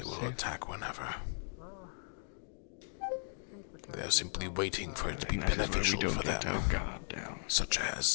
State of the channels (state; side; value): silent; right; digital silence